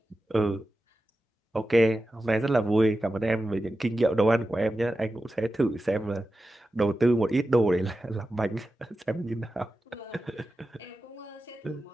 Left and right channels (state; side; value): normal; both; correlation 0.92